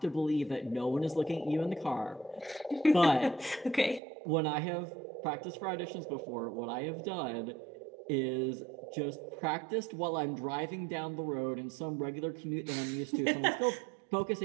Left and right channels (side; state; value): left; drops out; at 4.0 s